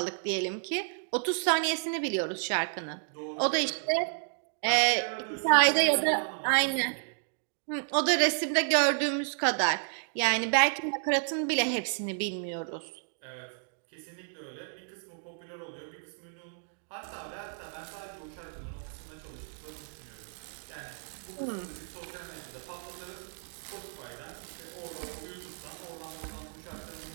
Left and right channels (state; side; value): silent; left; digital silence